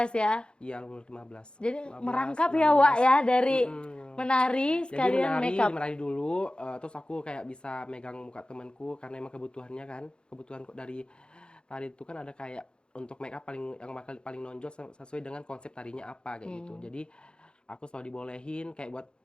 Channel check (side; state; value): right; late; 0.051 ms